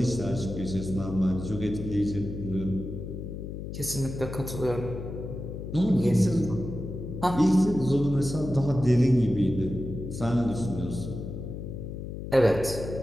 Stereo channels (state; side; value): noise; left; hum, 8 dB below the sound